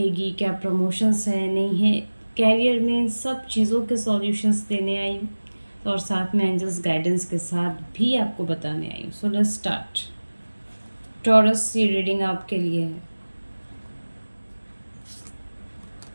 क्या प्रमोशंस है, नहीं है? कैरियर में इन सब चीज़ों के सॉल्यूशंस देने आई हूँ, और साथ में एंजल्स गाइडेंस के साथ भी आपको बताने आई हूँ। So let's start. टॉरस, ये रीडिंग आपके लिए है।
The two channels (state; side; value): inverted; both; correlation -1.00